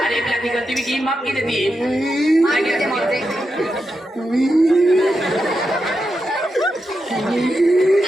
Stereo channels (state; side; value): normal; both; correlation 0.87